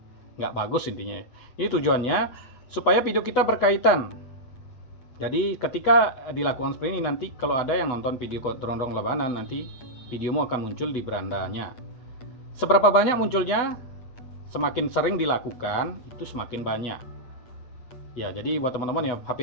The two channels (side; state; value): right; late; 8.1 ms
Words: nggak bagus intinya. Ini tujuannya supaya video kita berkaitan. Jadi ketika dilakukan seperti ini, nanti kalau ada yang nonton video gondrong labanan, nanti videomu akan muncul di berandanya. Seberapa banyak munculnya, semakin sering dilakukan itu semakin banyak. Ya, jadi buat teman-teman ya